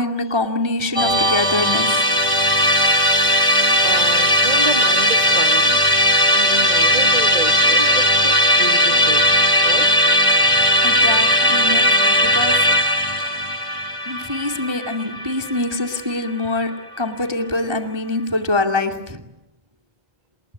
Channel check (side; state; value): left; late; 1.5 ms